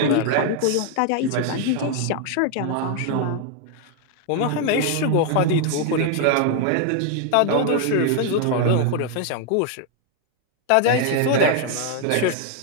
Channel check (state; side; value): different; both; correlation 0.00